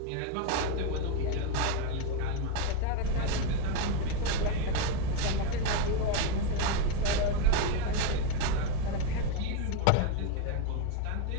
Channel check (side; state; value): both; different; correlation 0.01